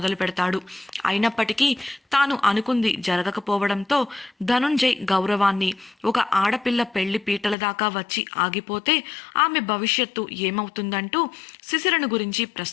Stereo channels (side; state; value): right; drops out; at 7.6 s